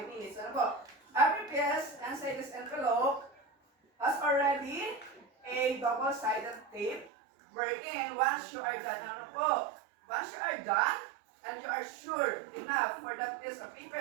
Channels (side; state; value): left; drops out; at 7.1 s